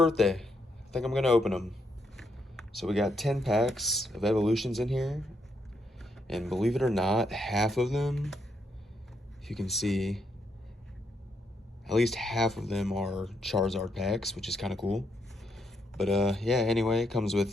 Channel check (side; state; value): both; normal; correlation 0.78